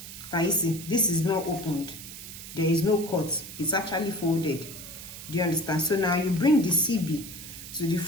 Can you see? This is not opened, there is no cut, it's actually folded. Do you understand? So now you bring the CB to the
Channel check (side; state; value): right; noise; hiss, 12 dB below the sound